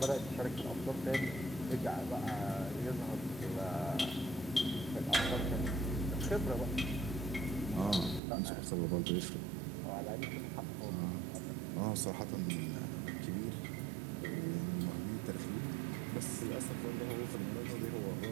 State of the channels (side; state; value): left; drops out; at 8.2 s